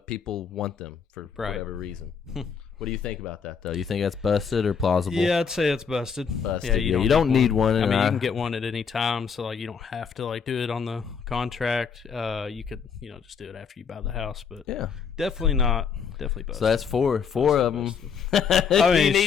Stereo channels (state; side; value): quieter; right; 6.3 dB